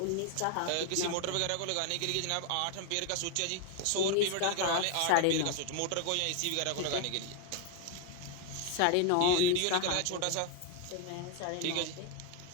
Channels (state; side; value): different; both; correlation 0.01